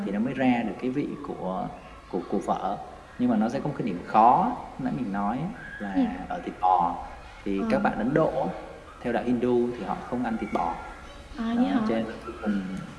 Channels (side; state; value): both; identical; correlation 1.00